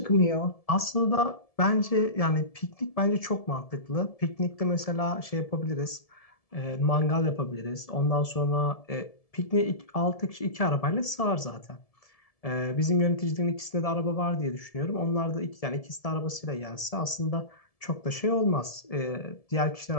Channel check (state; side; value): late; right; 1.7 ms